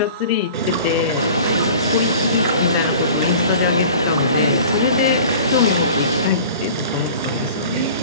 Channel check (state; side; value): inverted; both; correlation -0.43